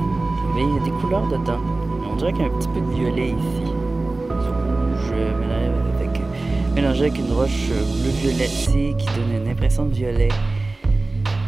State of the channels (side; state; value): left; quieter; 3.2 dB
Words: mais il y a des couleurs dedans. On dirait qu'il y a un petit peu de violet ici. Rouge mélangé avec une roche bleu violetée qui donne une impression de violet.